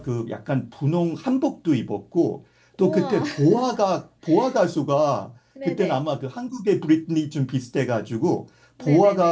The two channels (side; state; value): both; identical; correlation 1.00